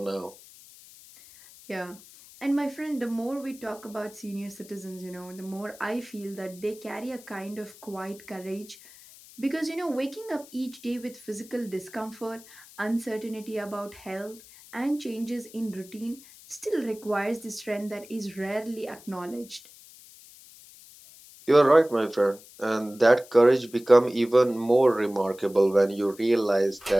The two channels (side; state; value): left; noise; hiss, 21 dB below the sound